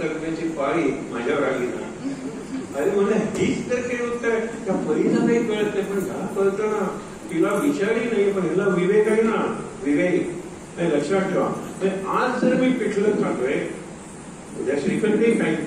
देण्याची पाळी माझ्यावर आली ना. अरे मला हीच तर काही उत्तर आहे. त्या परीला काही कळत नाही पण ह्याला कळतं ना. तिला विचारही नाही पण ह्याला विवेक आहे ना. विवेक नाही लक्षात ठेवा. आज जर मी पिठलं खातोय उद्या श्रीखंड काही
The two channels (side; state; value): both; identical; correlation 1.00